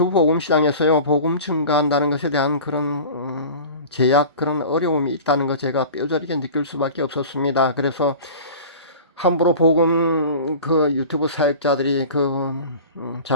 복음 시장에서요 복음 증가한다는 것에 대한 그런 제약 그런 어려움이 있다는 거 제가 뼈저리게 느낄 수밖에 없었습니다. 그래서 함부로 복음 그 유튜브 사역자들이 그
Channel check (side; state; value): both; inverted; correlation -0.38